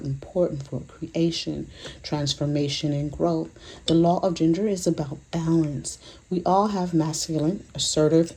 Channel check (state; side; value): identical; both; correlation 1.00